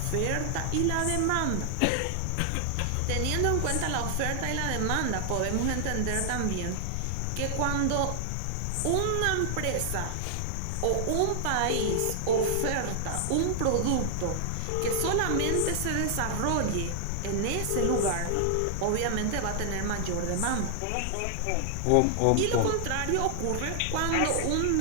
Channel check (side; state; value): both; different; correlation 0.00